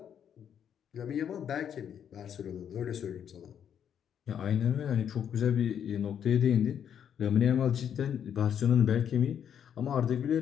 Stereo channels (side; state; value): right; quieter; 8.8 dB